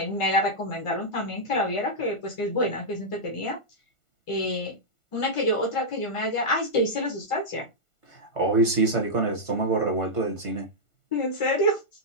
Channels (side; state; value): right; late; 1.5 ms